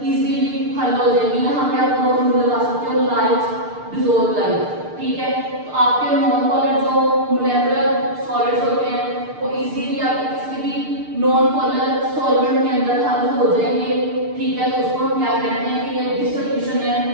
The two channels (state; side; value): late; left; 6.7 ms